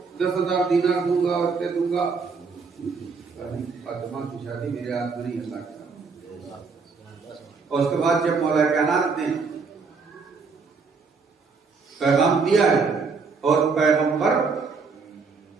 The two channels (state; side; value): quieter; left; 4.8 dB